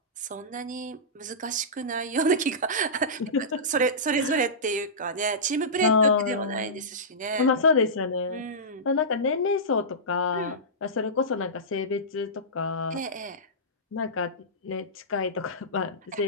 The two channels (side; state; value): both; normal; correlation -0.17